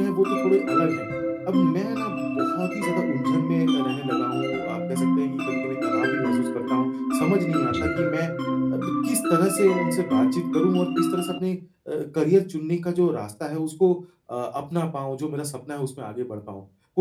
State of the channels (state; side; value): identical; both; correlation 1.00